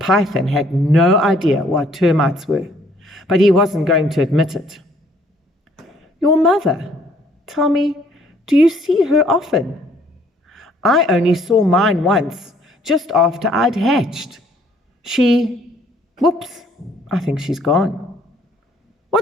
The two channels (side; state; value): both; normal; correlation 0.62